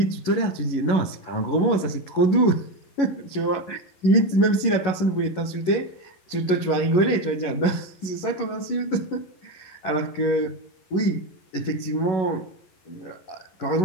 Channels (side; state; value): right; late; 11 ms